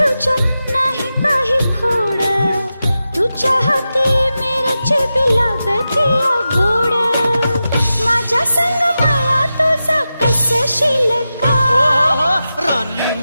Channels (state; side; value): inverted; both; correlation -0.92